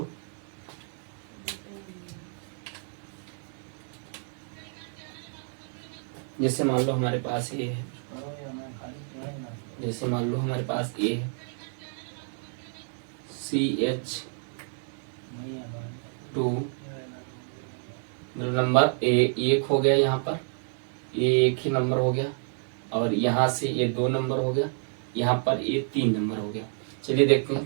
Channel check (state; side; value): silent; left; 59 dB below the other